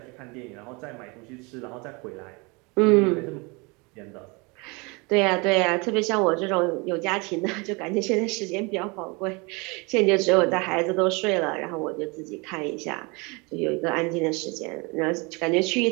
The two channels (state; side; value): quieter; left; 28.5 dB